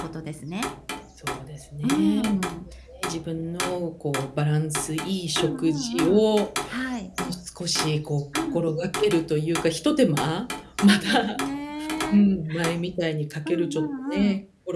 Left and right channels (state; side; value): identical; both; correlation 1.00